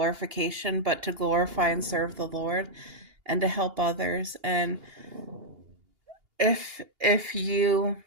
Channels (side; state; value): left; late; 2.8 ms